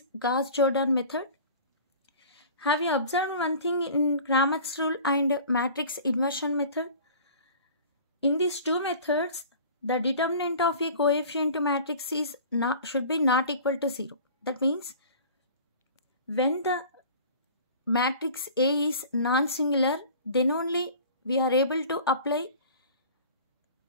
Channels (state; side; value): inverted; both; correlation -0.43